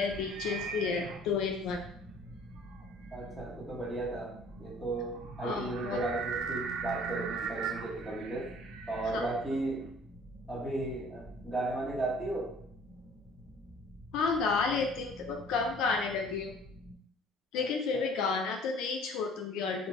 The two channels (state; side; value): normal; both; correlation 0.52